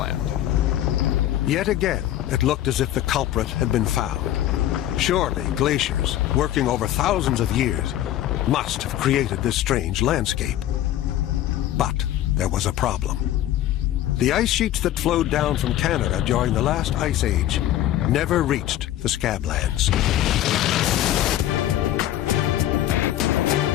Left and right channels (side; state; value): right; quieter; 13.0 dB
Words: Yet again, it looked as if the culprit had been found. Surely glaciers, working over thousands of years, must have created this strange landscape. But there was a problem. The ice sheets that flowed down from Canada during the last ice age never reached the Scablands.